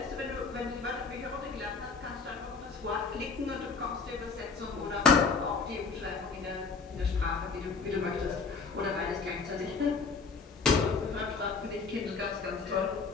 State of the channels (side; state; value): right; quieter; 4.8 dB